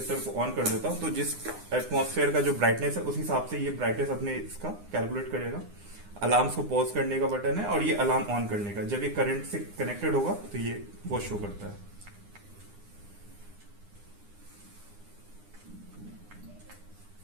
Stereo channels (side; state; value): left; late; 9.8 ms